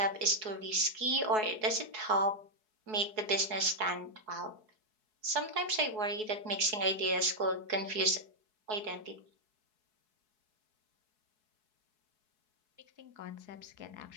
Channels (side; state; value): left; late; 4.7 ms